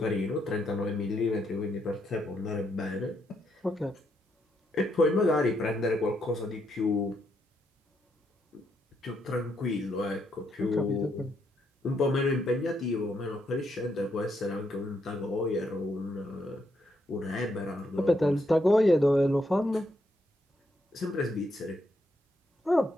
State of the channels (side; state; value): both; normal; correlation 0.77